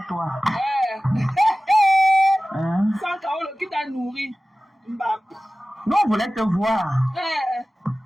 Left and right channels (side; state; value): both; normal; correlation 0.97